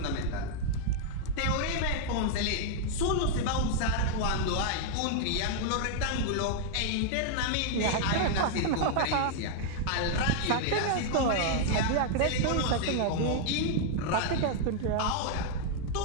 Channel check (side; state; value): both; different; correlation 0.00